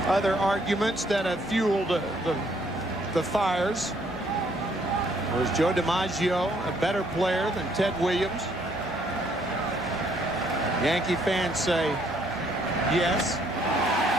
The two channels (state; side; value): normal; both; correlation 0.67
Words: Other arguments that have fueled the fires was Joe DiMaggio a better player than Ted Williams? Yankee fans say yes,